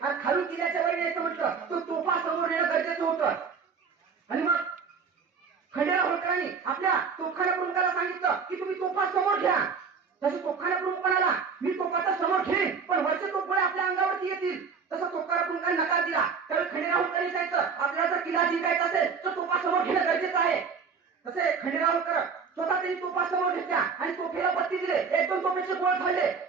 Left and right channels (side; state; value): left; quieter; 5.7 dB